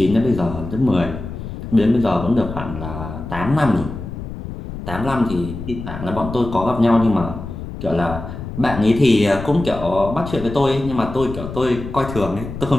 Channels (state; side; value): noise; left; rumble, 9 dB below the sound